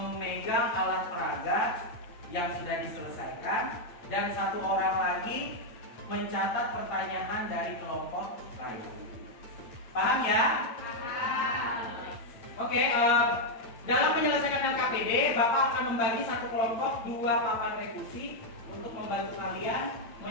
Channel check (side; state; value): right; late; 8.7 ms